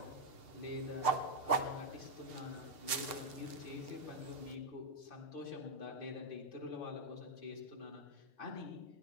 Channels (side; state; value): right; late; 6.7 ms